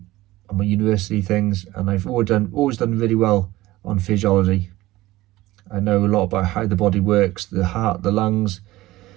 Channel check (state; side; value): quieter; left; 17.7 dB